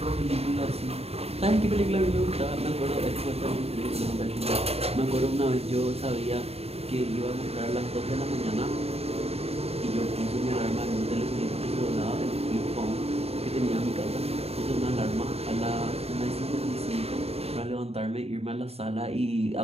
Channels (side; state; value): left; late; 0.29 ms